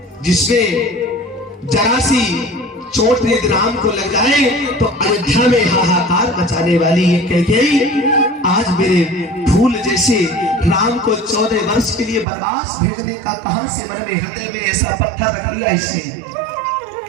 जिसमें जरा सी चोट यदि राम को लग जाए तो अयोध्या में हाहाकार मचाने वाली ये कैकेयी आज मेरे फूल जैसे राम को 14 वर्ष के लिए वनवास भेजने का कहां से मन में हृदय में ऐसा पत्थर रख लिया। इससे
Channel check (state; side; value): drops out; left; at 12.2 s